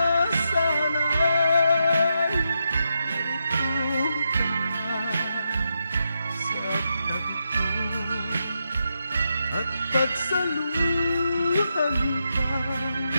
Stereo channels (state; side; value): inverted; both; correlation -0.84